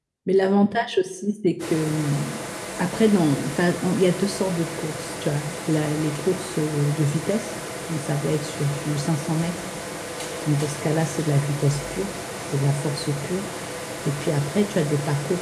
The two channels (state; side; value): identical; both; correlation 1.00